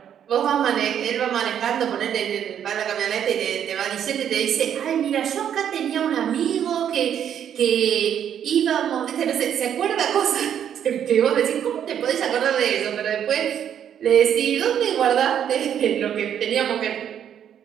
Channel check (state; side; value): quieter; left; 9.3 dB